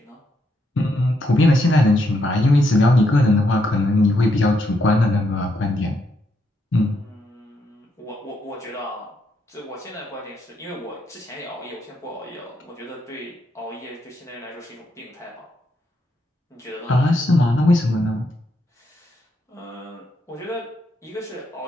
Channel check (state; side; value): normal; both; correlation 0.78